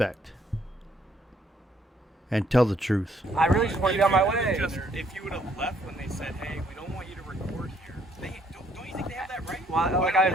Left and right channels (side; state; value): both; normal; correlation 0.67